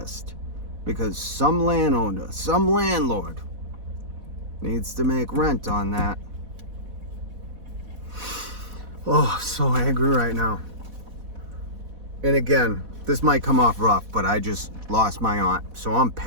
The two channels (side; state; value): left; late; 4.1 ms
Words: because some landowner, some landlord needs to make rent on that. Oh, so angry right now. And again, this might come off rough, but I just lost my aunt, so I'm